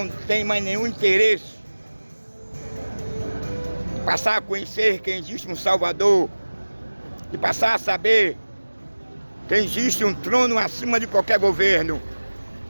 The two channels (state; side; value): inverted; both; correlation -1.00